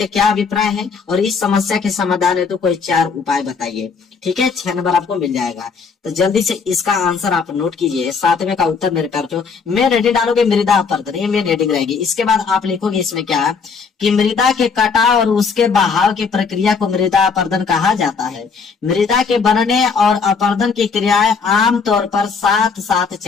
क्या अभिप्राय है और इस समस्या के समाधान है तो कोई 4 उपाय बताइए। ठीक है, 6 नंबर आपको मिल जाएगा। तो जल्दी से इसका आंसर आप नोट कीजिए। 7वें का उत्तर मेरे प्यार जो मैं रेडी डालोगे मृदा अपरदन, ये मेन हेडिंग रहेगी। इसके बाद आप लिखोगे इसमें क्या कि मृदा के कटाव और उसके बहाव की प्रक्रिया को मृदा अपरदन कहा जाता है। मृदा के बनने और अपरदन की क्रियाएं आमतौर पर साथ साथ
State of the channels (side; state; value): right; quieter; 5.4 dB